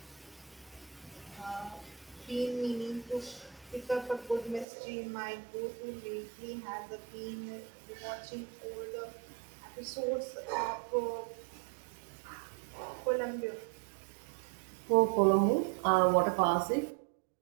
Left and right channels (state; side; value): drops out; left; at 4.7 s